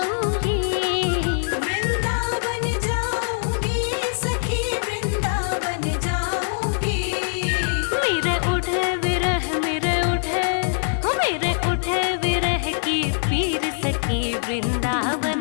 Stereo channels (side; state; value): right; silent; digital silence